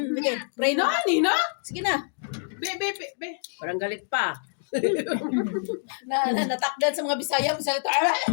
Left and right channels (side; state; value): right; silent; digital silence